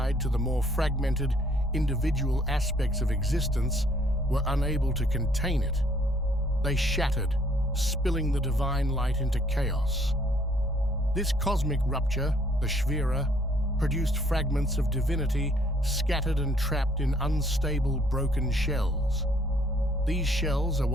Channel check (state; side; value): normal; both; correlation 0.63